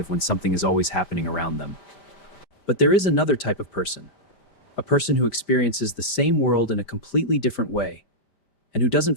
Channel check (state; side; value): late; right; 5.1 ms